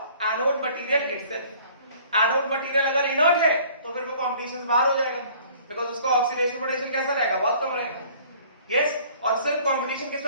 anode material itself. Anode material अगर इनर्ट है तो फिर वो कंपटीशन से बाहर हो जाएगा, बिकॉज़ उसका ऑक्सीडेशन पोटेंशियल कैसा रहेगा, बहुत कम रहेगा। यस, और सिर्फ कंपटीशन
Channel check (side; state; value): both; inverted; correlation -0.53